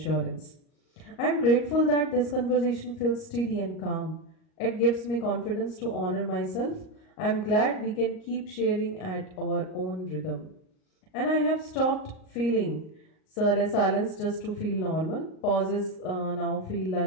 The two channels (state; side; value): late; right; 38 ms